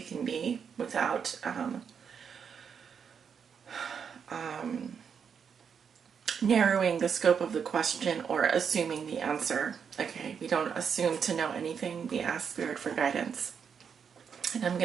be without narrowing the scope of the question or assuming the answer. Okay, we don't assume to know anything. We ask Spirit for guidance. And I'm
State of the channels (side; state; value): left; quieter; 6.9 dB